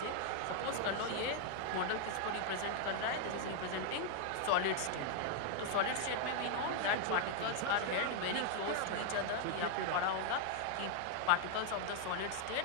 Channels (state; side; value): different; both; correlation 0.00